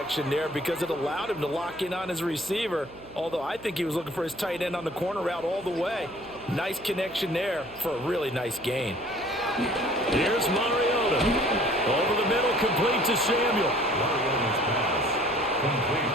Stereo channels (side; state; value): right; noise; hum, 21 dB below the sound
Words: there because it allowed him to lock in on his receiver, although I think he was looking for his tight end on the corner route all the way. Nice connection there for a really nice gain. Here's Mariota. Over the middle, complete to Samuel. Mariota's pass complete